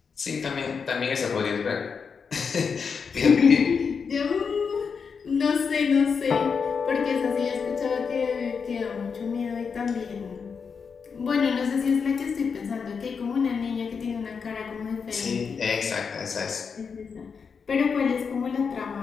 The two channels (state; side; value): quieter; right; 5.8 dB